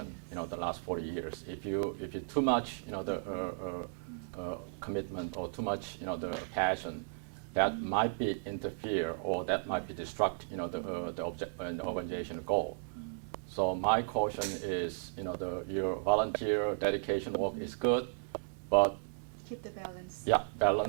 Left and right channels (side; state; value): left; silent; digital silence